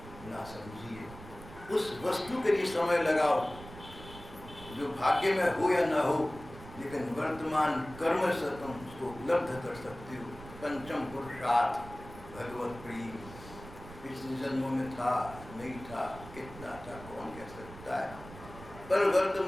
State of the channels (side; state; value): right; noise; rumble, 16 dB below the sound